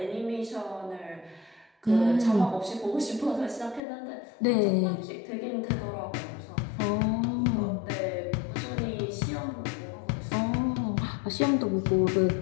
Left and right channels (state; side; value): drops out; right; at 3.8 s